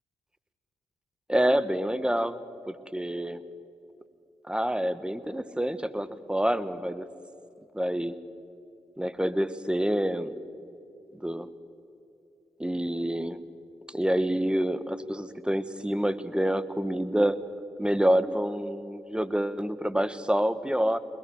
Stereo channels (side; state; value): both; normal; correlation 0.96